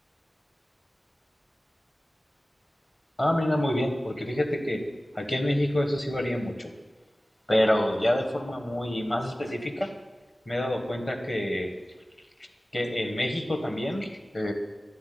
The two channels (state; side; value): normal; both; correlation 0.97